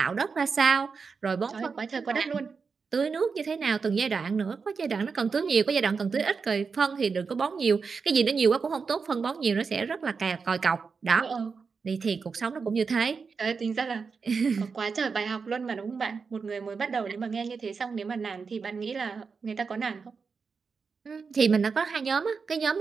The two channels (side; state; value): left; quieter; 5.2 dB